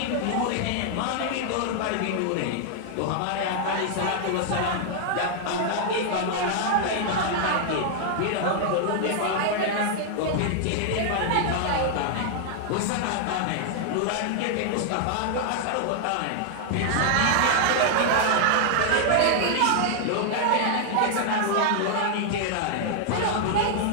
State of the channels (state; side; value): different; both; correlation -0.01